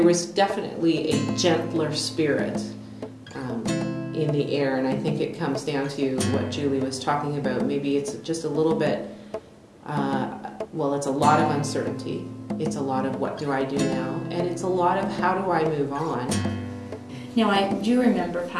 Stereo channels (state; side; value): identical; both; correlation 1.00